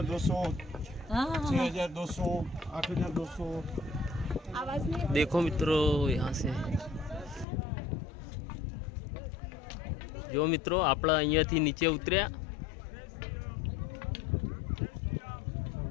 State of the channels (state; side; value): drops out; right; at 7.5 s